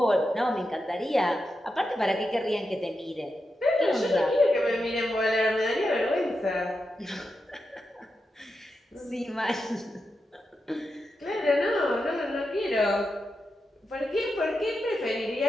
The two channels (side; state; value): both; normal; correlation 0.88